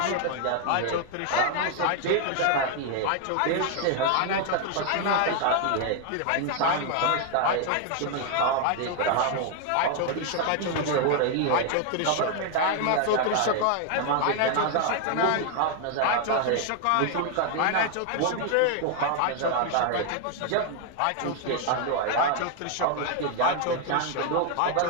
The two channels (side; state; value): both; different; correlation 0.00